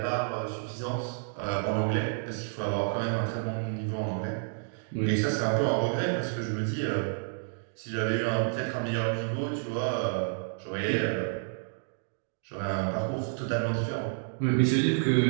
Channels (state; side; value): silent; left; digital silence